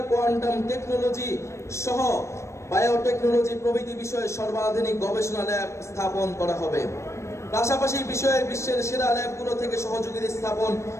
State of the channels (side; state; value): right; late; 0.14 ms